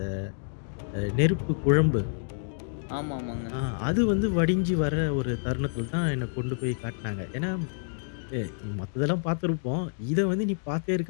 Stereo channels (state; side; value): silent; right; digital silence